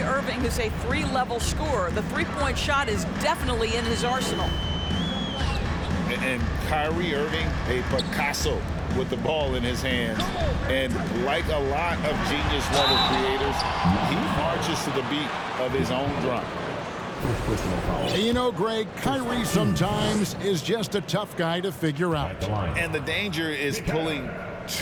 Irving is a 3-level scorer. The three-point shot is definitely in his arsenal. And Kyrie Irving, a Picasso with the ball in his hands. And like a lot of genius-level creators, he marches to the beat of his own drum. You know, Greg, Kyrie sometimes is just a tough guy to figure out. And the danger is pulling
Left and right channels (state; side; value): identical; both; correlation 1.00